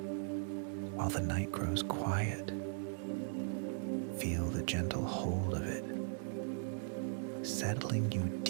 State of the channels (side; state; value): left; silent; digital silence